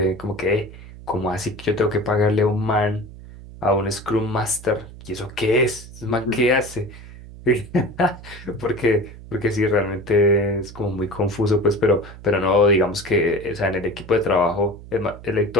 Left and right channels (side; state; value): right; noise; hum, 16 dB below the sound